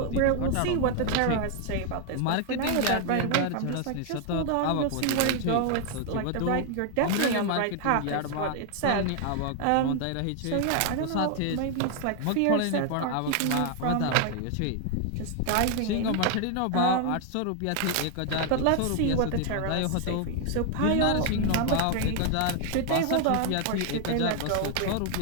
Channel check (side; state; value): both; different; correlation 0.00